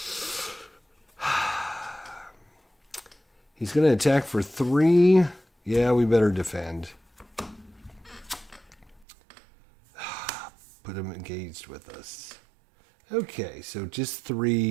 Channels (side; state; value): left; drops out; at 9.1 s